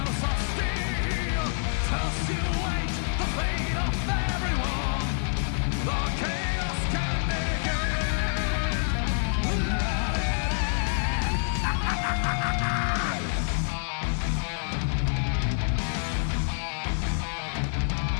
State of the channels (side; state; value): right; silent; 60 dB below the other